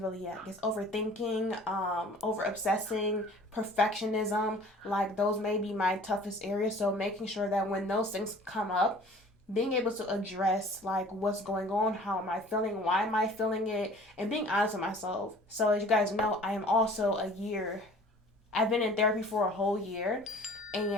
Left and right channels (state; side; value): normal; both; correlation 0.48